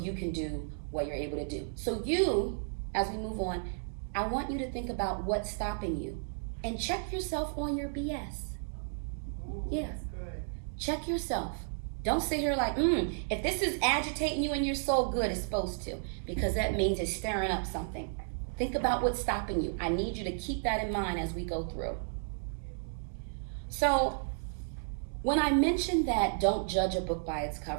can do what you're able to do. So you, as we move on, I want you to think about what's stopping you and check yourself on your BS. Ooh, Yeah. that's good. Check yourself. Don't sit here like, if this is agitating you in your soul, good, it's supposed to, because that means it's stirring up something. Think about what's stopping you. I need you to keep that in mind as we go through. So when I mentioned that don't judge a book by its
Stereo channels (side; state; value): left; silent; digital silence